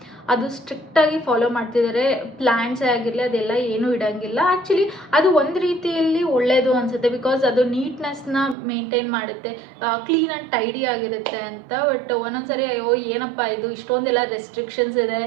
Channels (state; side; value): drops out; left; at 8.6 s